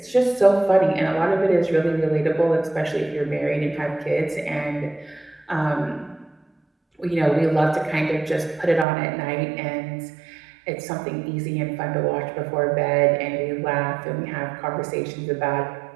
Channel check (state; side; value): drops out; left; at 8.8 s